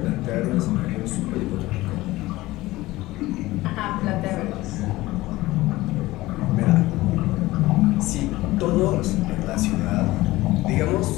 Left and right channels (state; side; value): quieter; right; 18.5 dB